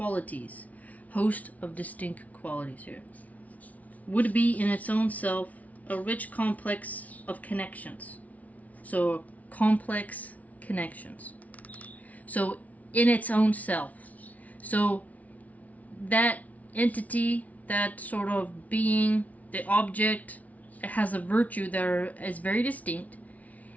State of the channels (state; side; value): late; right; 0.071 ms